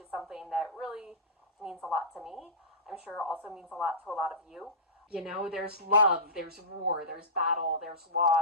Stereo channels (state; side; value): normal; both; correlation -0.19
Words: something that really means a lot to me. I'm sure also means a lot to a lot of you. You know, there's love, there's war, there's battle, there's